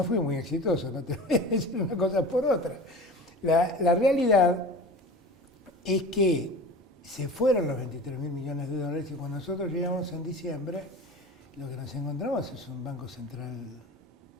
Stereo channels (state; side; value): normal; both; correlation 0.36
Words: fui muy exitoso, no te voy a decir una cosa por otra. La realidad es que se fueron los 23.000 millones de dólares y cuando nosotros llegamos en diciembre, lo que nos encontramos es un banco central